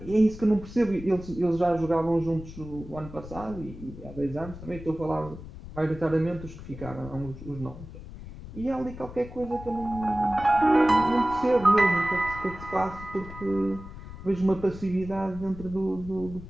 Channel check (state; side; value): noise; left; rumble, 13 dB below the sound